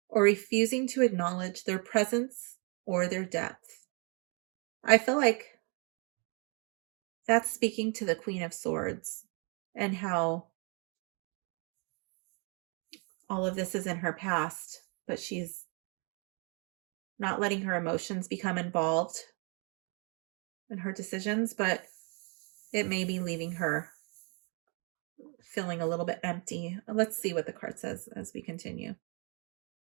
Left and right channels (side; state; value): left; quieter; 35.2 dB